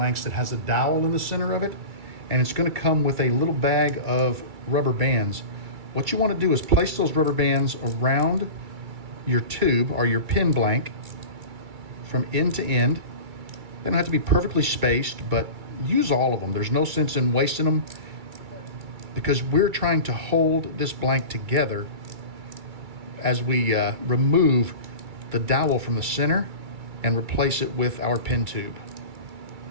that has a dowel in the center of it, and it's going to come with a little bag of rubber bands. What you want to do is place those rubber bands around your tube or your pin blank from end to end. They don't have to be perfectly spaced, but use all of them. There's no sense in wasting them because we're trying to hold this blank together as we remove the dowel from the center and replace it with our pin tube.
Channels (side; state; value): left; late; 2.3 ms